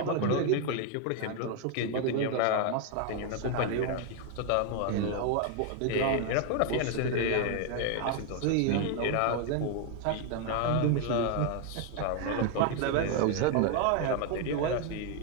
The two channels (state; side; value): different; both; correlation 0.00